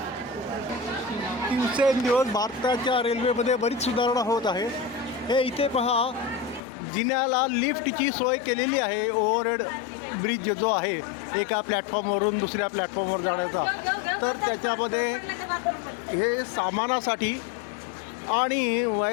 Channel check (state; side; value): drops out; right; at 6.6 s